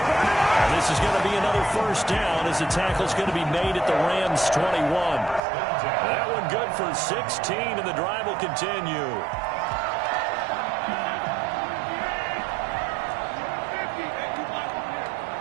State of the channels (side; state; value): left; drops out; at 5.4 s